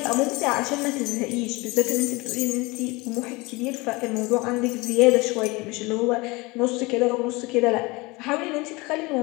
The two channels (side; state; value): right; quieter; 24.1 dB